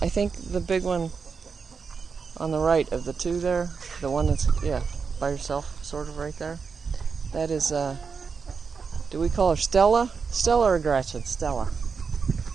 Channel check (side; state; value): left; quieter; 5.5 dB